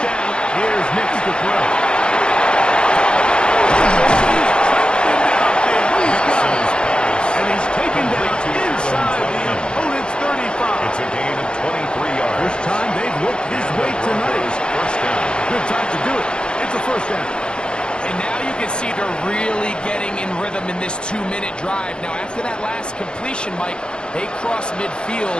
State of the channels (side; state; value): right; late; 0.051 ms